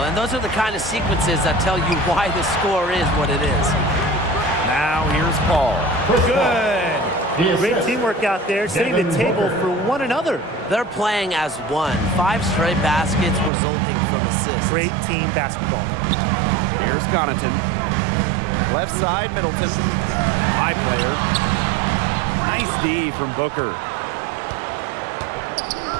And those are the kind of sequences that tell you why the score is what it is. Now here's Paul. Good. Great teamwork out there, setting the table for one another. They're playing as one. 5 straight baskets resulting from assists. Great team basketball. Here's Connaughton. Left side, Middleton. My player. Nice D from Booker.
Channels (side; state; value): left; drops out; at 13.5 s